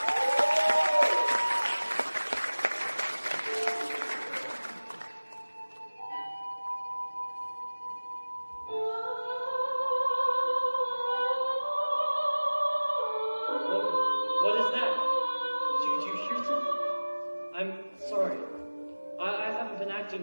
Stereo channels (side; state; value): both; inverted; correlation -1.00